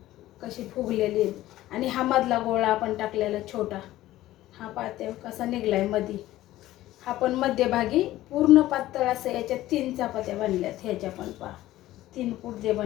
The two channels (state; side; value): quieter; right; 15.4 dB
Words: कशी फुगलेली. आणि हा मधला गोळा आपण टाकलेला छोटा, हा पहा ते कसा निघलाय मध्ये. हा पण मध्यभागी पूर्ण पातळ असं याच्यात 3 चपात्या बनल्यात. ह्याच्या पण पहा 3 पुडदे